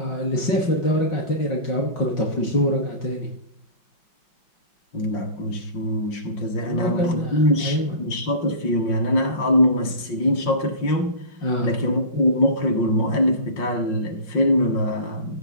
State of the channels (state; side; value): late; right; 5.6 ms